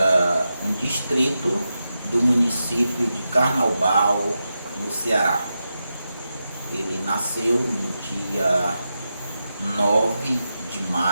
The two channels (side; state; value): both; inverted; correlation -0.89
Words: um distrito do município de Carnaubal, no Ceará. Ele nasceu no dia 9 de